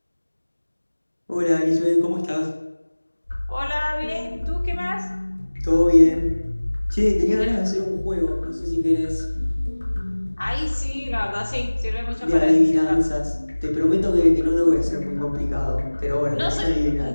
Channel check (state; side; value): inverted; both; correlation -1.00